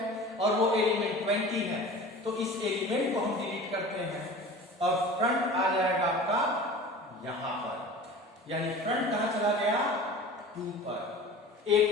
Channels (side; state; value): both; normal; correlation 0.38